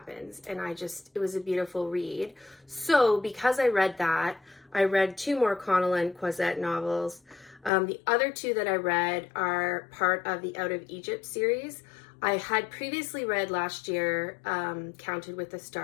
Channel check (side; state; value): right; drops out; at 7.7 s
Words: And it was a beautiful read. So because I read that, I read 2 more Connellan Cosette novels. The other 2 that I read are part of the Out of Egypt series. I had previously read last year Counted with the